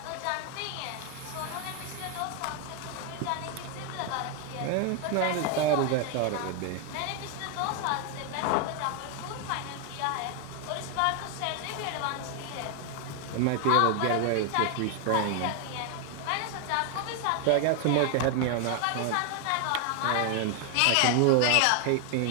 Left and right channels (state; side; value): different; both; correlation 0.00